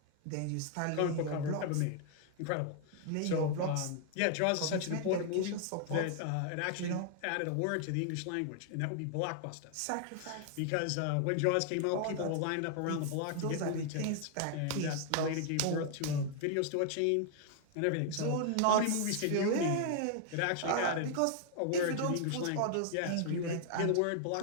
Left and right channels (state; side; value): different; both; correlation 0.00